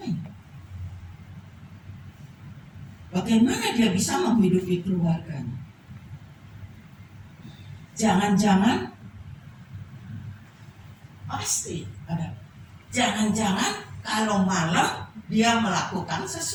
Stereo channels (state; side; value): identical; both; correlation 1.00